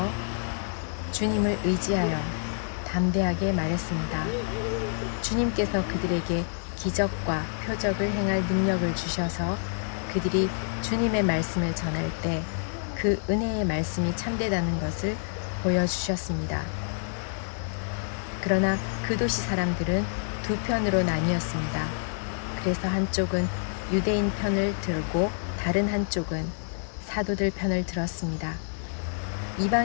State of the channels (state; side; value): silent; right; 60 dB below the other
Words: 주님을 의지하여 담대하게 말했습니다. 주님께서 그들에게 기적과 표적을 행할 능력을 주셔서 그들이 주님의 말씀을 전할 때 그 은혜의 말씀이 참되다는 것을 보여주셨습니다. 그러나 그 도시 사람들은 두 편으로 나뉘었습니다. 그래서 한쪽은 유대인 편을 들고 다른 한쪽은 사도들 편을 들었습니다.